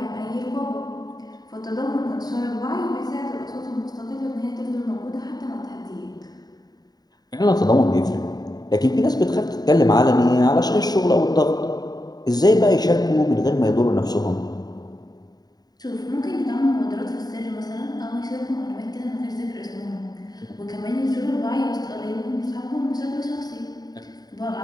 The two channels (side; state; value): right; late; 0.19 ms